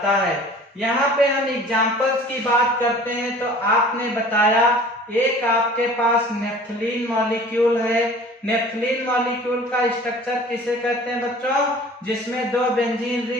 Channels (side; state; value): both; normal; correlation 0.46